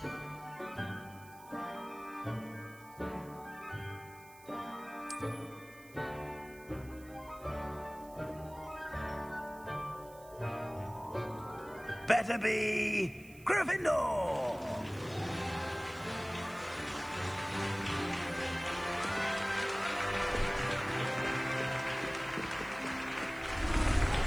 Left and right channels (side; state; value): right; noise; hiss, 22 dB below the sound